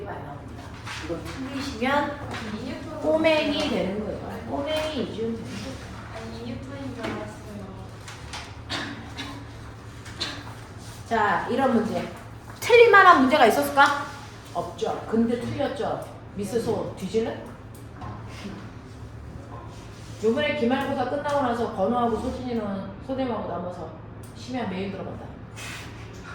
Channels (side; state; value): both; identical; correlation 1.00